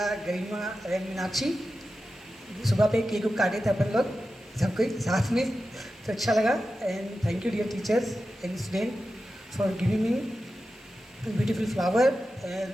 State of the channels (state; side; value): normal; both; correlation 0.92